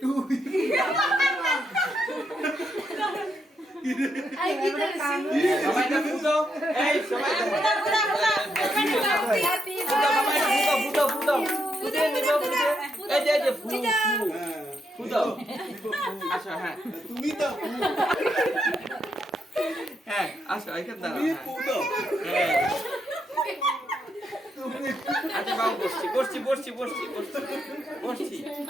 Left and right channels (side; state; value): both; normal; correlation 0.79